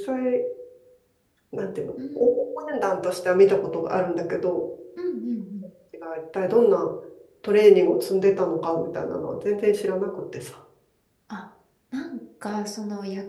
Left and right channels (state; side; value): identical; both; correlation 1.00